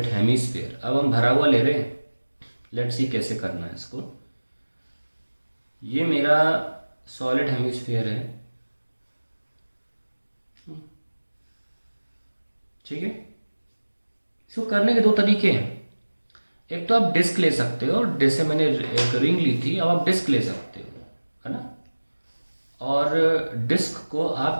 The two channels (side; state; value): both; inverted; correlation -1.00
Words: hemisphere. अब हम भरा हुआ ले रहे हैं, लेट्स सी कैसे करना है इसको। ये मेरा सॉलिड हेमीस्फीयर है, ठीक है। इसको करने के दो तरीके हैं। एक तो आप डिस्क ले सकते हो, जैसे मैंने एक रिंग ली थी, अब आप डिस्क ले सकते हो, है ना। और डिस्क को